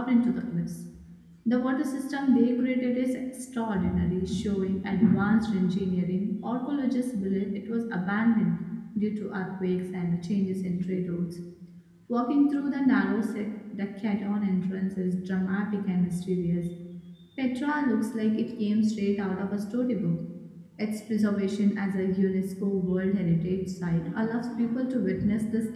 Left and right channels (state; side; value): identical; both; correlation 1.00